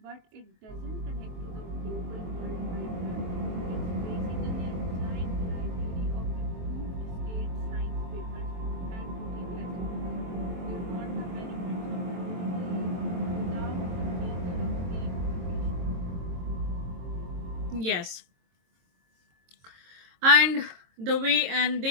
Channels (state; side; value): late; left; 23 ms